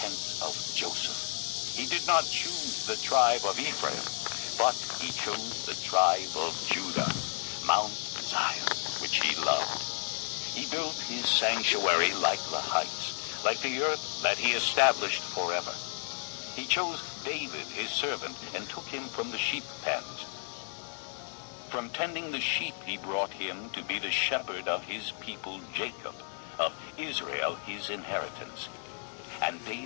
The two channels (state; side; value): silent; right; digital silence